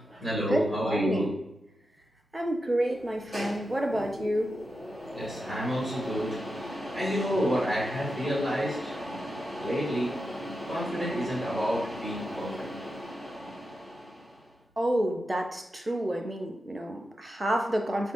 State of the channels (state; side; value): normal; both; correlation 0.89